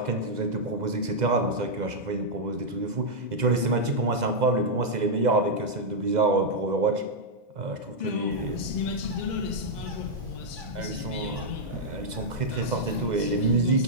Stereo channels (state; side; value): late; left; 2.0 ms